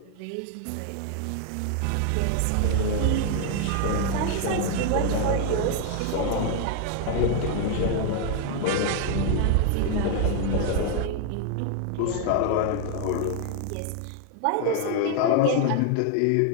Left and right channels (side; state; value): both; different; correlation 0.00